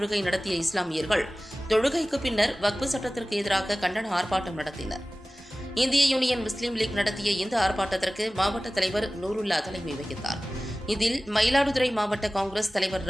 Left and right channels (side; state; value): both; normal; correlation 0.97